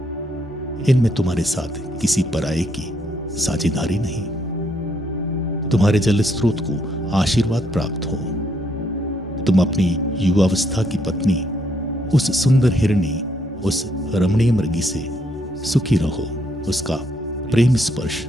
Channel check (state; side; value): normal; both; correlation 0.73